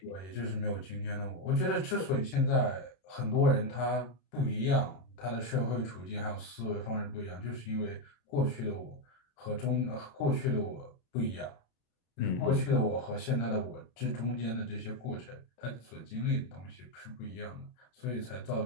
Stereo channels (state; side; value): late; right; 32 ms